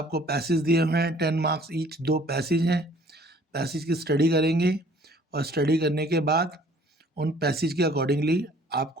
पैसेज दिए हुए हैं, 10 मार्क्स ईच, 2 पैसेज हैं। पैसेज की स्टडी करेंगे और स्टडी करने के बाद उन पैसेज के अकॉर्डिंगली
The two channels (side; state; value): both; normal; correlation 0.55